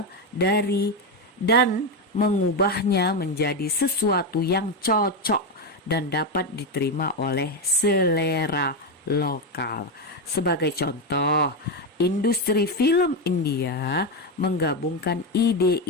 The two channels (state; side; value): normal; both; correlation 0.09